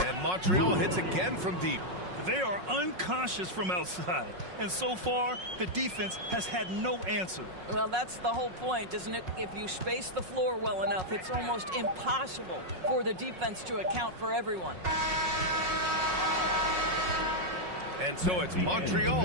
Montreal hits again from deep. They are unconscious from outside. And so far, the defense has had no answer. Well, that's the whole point, isn't it? If you space the floor well enough, it's almost impossible for the defense to account for everyone. And so it's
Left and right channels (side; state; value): left; late; 5.5 ms